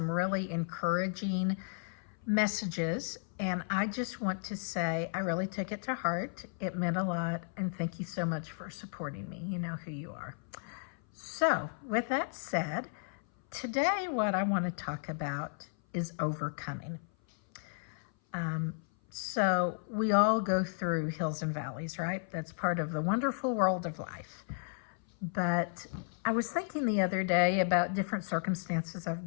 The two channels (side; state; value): right; silent; 55 dB below the other